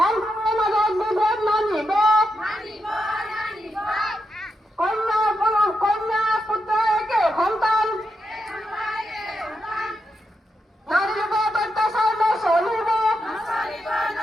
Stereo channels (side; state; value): both; normal; correlation 0.84